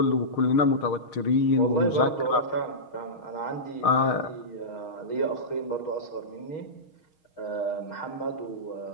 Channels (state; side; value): late; right; 6.4 ms